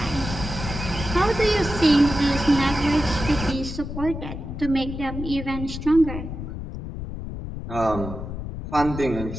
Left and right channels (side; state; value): left; noise; rumble, 7 dB below the sound